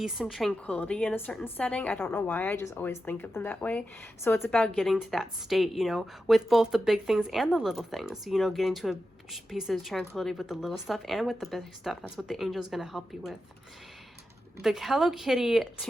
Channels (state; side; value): normal; both; correlation 0.90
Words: and tranquility in a certain setting. I don't know why, I just always think of them that way. So it's about getting to that state, you know, with both the big things and the little things, you know, getting to a piece of tranquility with the little stuff and with the big stuff. That's what the angel's going to help you with. The Hello Kitty